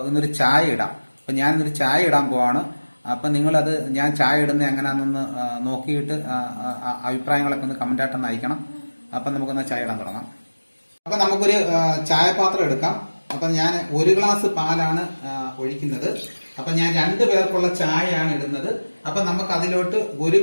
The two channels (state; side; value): inverted; both; correlation -1.00